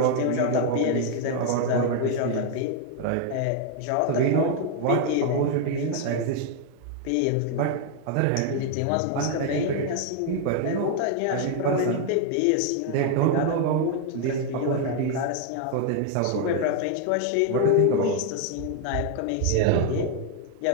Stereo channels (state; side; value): different; both; correlation 0.00